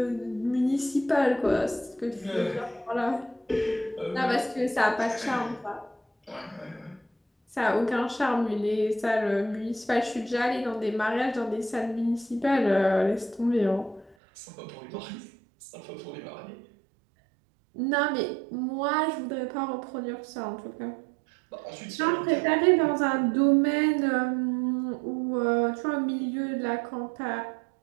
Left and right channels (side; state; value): left; drops out; at 14.2 s